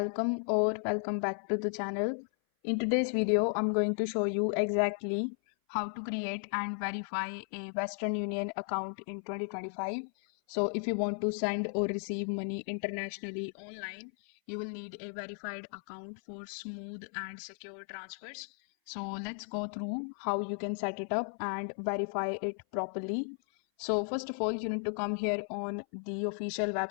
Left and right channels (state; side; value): silent; right; 55 dB below the other